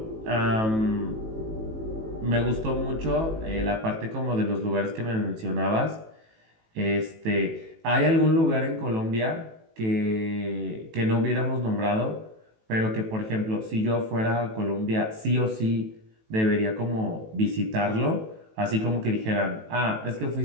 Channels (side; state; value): left; late; 18 ms